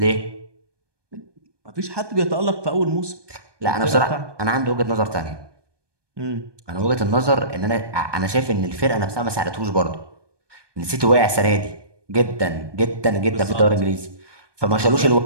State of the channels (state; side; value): late; left; 1.2 ms